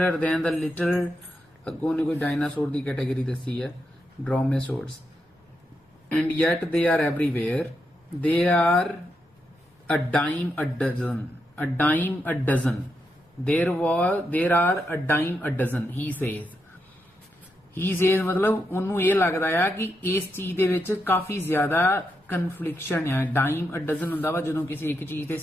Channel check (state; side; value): normal; both; correlation 0.84